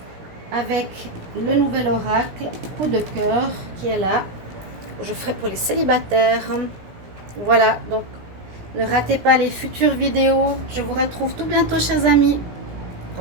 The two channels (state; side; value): late; left; 17 ms